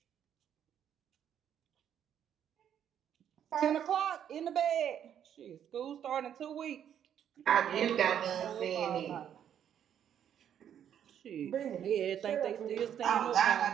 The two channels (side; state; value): left; quieter; 9.4 dB